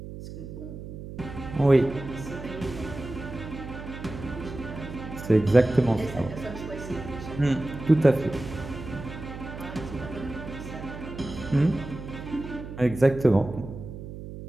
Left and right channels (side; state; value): right; noise; hum, 11 dB below the sound